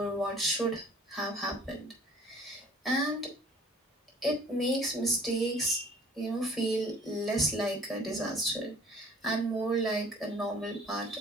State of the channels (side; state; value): both; normal; correlation 0.52